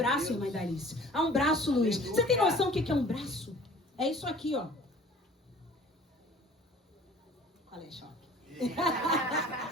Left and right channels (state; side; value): normal; both; correlation 0.48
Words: irmã Dalice. Há um braço, Luiz. Você tem noção do que é um braço? É isso aqui, ó. Qual é, choque?